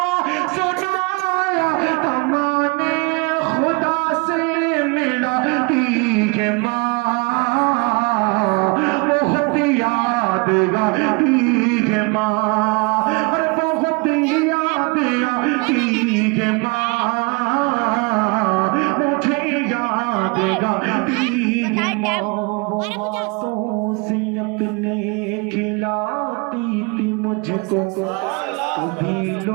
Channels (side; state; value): left; quieter; 30.0 dB